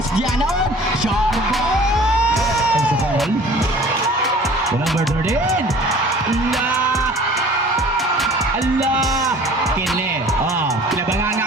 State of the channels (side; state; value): both; normal; correlation 0.47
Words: Ganon. Short ball. And sa foul. To number 13. Allah. Kili. Kinabangan